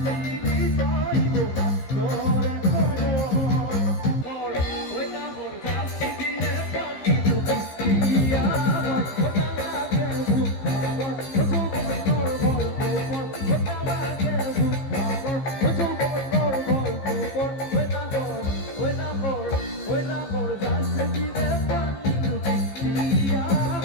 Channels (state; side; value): late; right; 15 ms